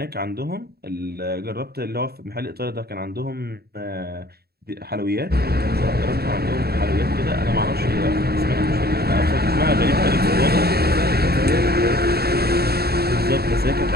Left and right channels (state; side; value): late; left; 0.46 ms